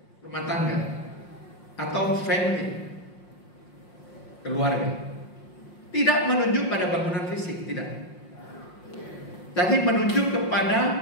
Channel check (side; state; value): right; late; 5.6 ms